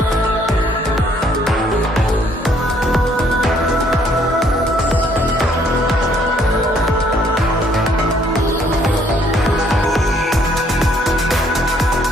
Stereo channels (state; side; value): normal; both; correlation 0.65